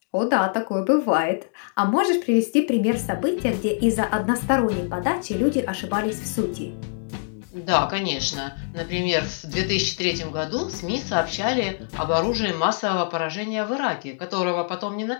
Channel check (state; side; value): silent; right; digital silence